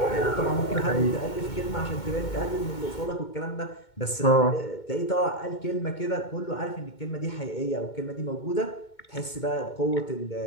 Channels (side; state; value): right; late; 2.2 ms